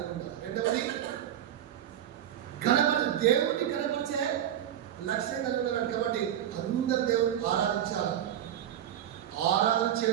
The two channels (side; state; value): left; quieter; 10.8 dB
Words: ఉండాలి. రెండవది దేవుడిని కనపరిచే లక్ష్యం కలిగి ఉండాలి. కాబట్టి అందరు దేవుడిని ఆరాధించాలి. ఆరాధన